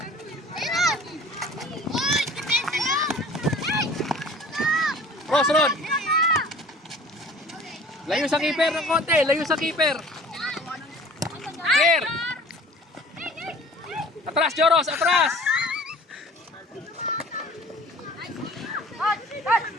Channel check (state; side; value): normal; both; correlation 0.47